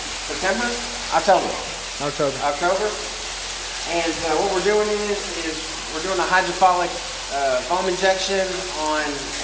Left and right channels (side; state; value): both; identical; correlation 1.00